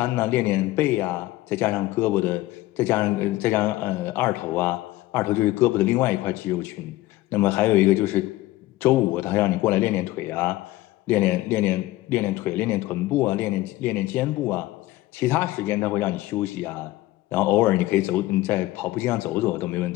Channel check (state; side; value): quieter; right; 17.3 dB